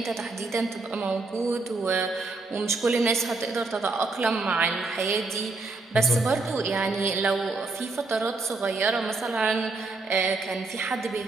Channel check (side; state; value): left; quieter; 3.5 dB